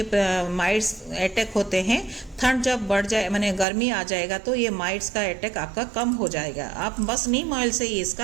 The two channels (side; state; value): left; drops out; at 3.7 s